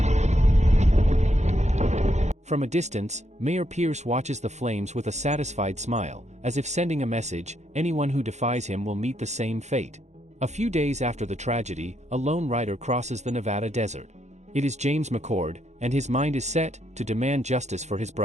From a distance, Mayor Pierce watches the flames with a satisfied smile, as if sending a message, anyone who defies him will meet the same fate. A few days after the tragedy, a lone rider crosses the Nevada desert. It is James McCord, and his mind is set to demand justice for his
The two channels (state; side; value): late; left; 0.33 ms